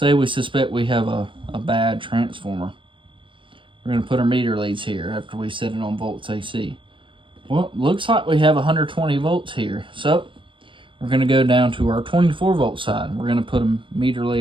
we suspect we have a bad transformer. We're going to put our meter leads here after we set it on volts AC. Well, looks like we have 120 volts here. So, we're going to go down to our 24 volt side. We're going to put a meter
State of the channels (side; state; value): left; late; 0.25 ms